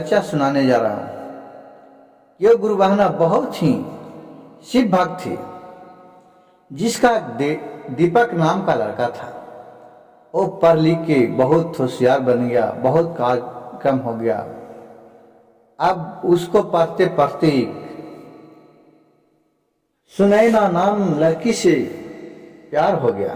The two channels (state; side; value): identical; both; correlation 1.00